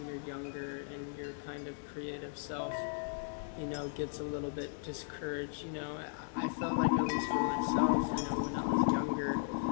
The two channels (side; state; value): right; silent; 53 dB below the other